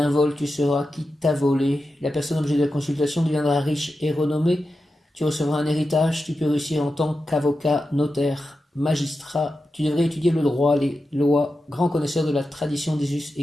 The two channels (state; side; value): normal; both; correlation 0.91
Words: vol, tu sauras qui t'a volé. La personne objet de la consultation deviendra riche et renommée. Tu recevras un héritage, tu peux réussir en tant qu'avocat, notaire, magistrat. Tu devrais étudier le droit, les lois, grand connaisseur de la tradition des us